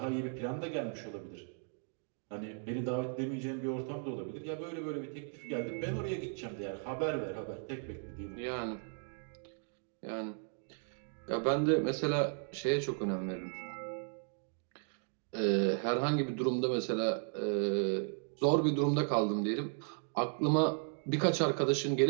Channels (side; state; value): left; silent; 54 dB below the other